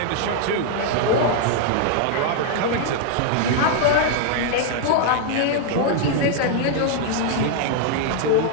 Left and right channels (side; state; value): both; different; correlation 0.00